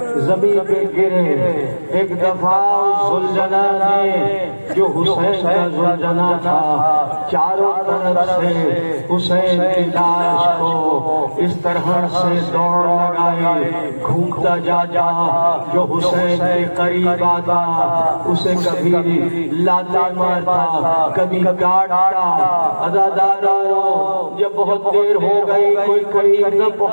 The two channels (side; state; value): both; inverted; correlation -1.00